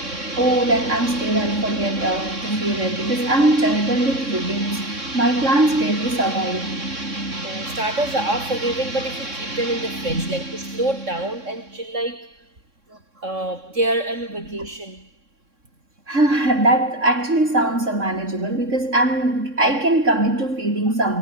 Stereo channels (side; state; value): left; late; 3.6 ms